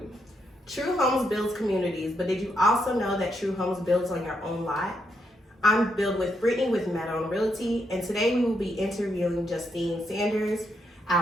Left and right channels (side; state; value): both; normal; correlation 0.79